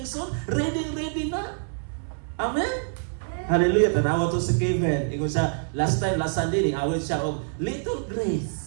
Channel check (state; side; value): silent; left; 61 dB below the other